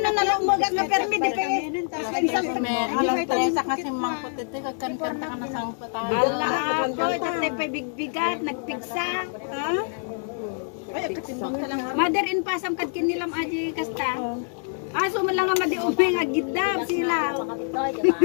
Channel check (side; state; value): right; silent; digital silence